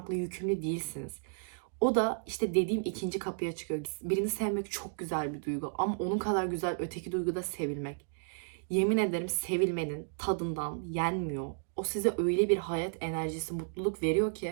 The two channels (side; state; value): left; silent; digital silence